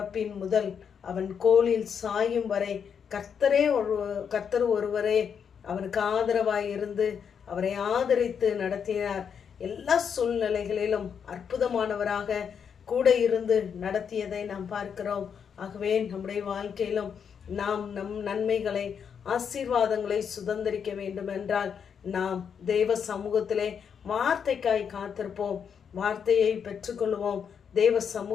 முதல் அவன் கோலில் சாயும் வரை கர்த்தர் ஒருவரே அவனுக்கு ஆதரவாய் இருந்து அவரை ஆதரித்து நடத்தினார். எல்லா சூழ்நிலைகளிலும் அற்புதமானவராக கூட இருந்து நடத்தியதை நாம் பார்க்கிறோம். ஆகவே நம்முடைய வாழ்க்கையிலும் நாம் நம் நன்மைகளை, ஆசீர்வாதங்களை சுதந்திரிக்க வேண்டும் என்றால் நாம் தேவ சமூகத்திலே வார்த்தைக்காய் காத்திருப்போம். வார்த்தையை பெற்றுக்கொள்வோம். தேவ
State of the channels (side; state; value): right; quieter; 7.2 dB